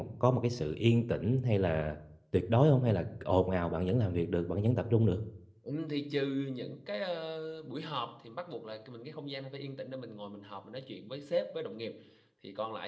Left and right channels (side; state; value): both; identical; correlation 1.00